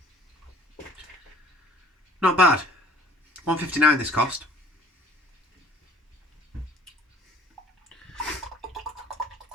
Not bad. £1.59 this cost.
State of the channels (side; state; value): both; normal; correlation 0.51